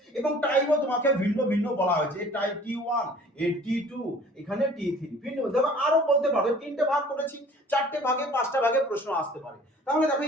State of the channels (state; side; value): normal; both; correlation 0.50